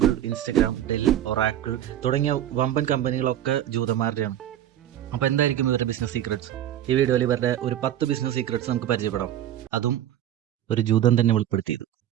ഇൻസ്റ്റഗ്രാം, ഡെൽ, ഒറാക്കിൾ തുടങ്ങിയ വമ്പൻ കമ്പനികളൊക്കെ ജൂതന്മാരുടെയാണ്. അപ്പോൾ എന്തായിരിക്കും ഇവരുടെ ബിസിനസ് സീക്രട്സ്? ഈ വീഡിയോയിൽ ഇവരുടെ ഒരു 10 ബിസിനസ് സീക്രട്സ് നമുക്ക് പരിചയപ്പെടാം. അതും ഒരു ജൂതൻ തന്നെ വെളിപ്പെടുത്തിയത്.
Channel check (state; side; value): quieter; left; 11.6 dB